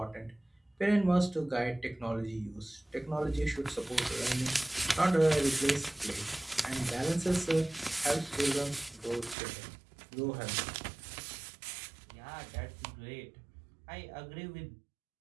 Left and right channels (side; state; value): left; drops out; at 9.3 s